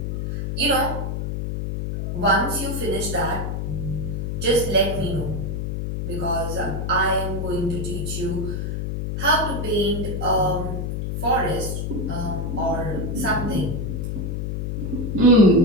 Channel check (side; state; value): left; noise; hum, 3 dB below the sound